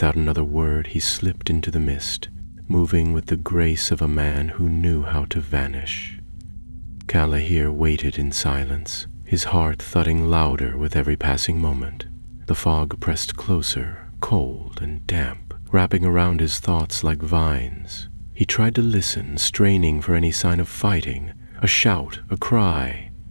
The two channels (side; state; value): both; inverted; correlation -1.00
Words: another word, he slipped into the mist, moving with the grace of a man who knew how to vanish. Calahir waited in silence, his heart thudding louder with every passing moment. The fog pressed closer, cold and damp, wrapping around his thoughts like vines. He tried to listen, straining for any sign of fighting, a shout, a cry.